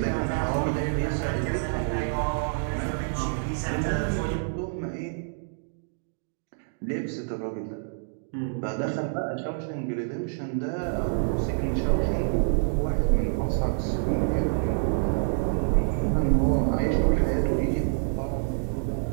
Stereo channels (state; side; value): silent; left; digital silence